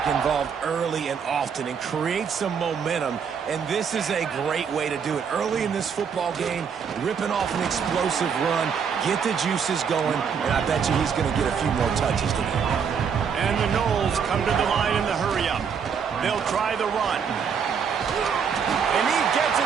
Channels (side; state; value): left; quieter; 6.8 dB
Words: involved early and often and create some momentum, and this is a great way to do it. Early in this football game, ripping off an explosive run, get the juices going, and I bet you he's going to get a few more touches today. And the Knowles come to the line in the hurry-up. They'll try the run. And he gets